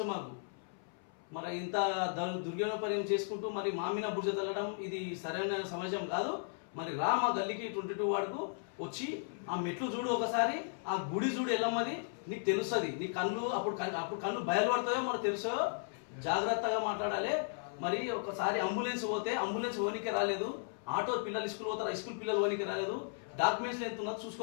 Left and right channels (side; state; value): right; silent; 54 dB below the other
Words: మాకు. మరి ఇంత దుర్వినియోగపర్యం చేసుకుంటూ మరి మామిన బుర్జ తగ్గడం ఇది సరైన సమాజం కాదు. మరి మా గల్లీకి 22 వార్డుకు వచ్చి ఆ మెట్లు చూడు, ఒకసారి ఆ గుడి చూడు ఎల్లమ్మది, నీకు తెలుస్తుంది. నీ అప్పుడు కళ్ళు బయలుపడతాయో మనకు తెలుసో. జాగ్రత్తగా మాట్లాడాలి. మరి ఒకసారి అంబులెన్స్ పోతే అంబులెన్స్ ఓనికి రాలేదు, ఆటో పిల్లలు స్కూల్ పోతారు, స్కూల్ పిల్లలు ఓనికి రాలేదు. డాక్యుమెంట్స్ ఎంత ఉన్నది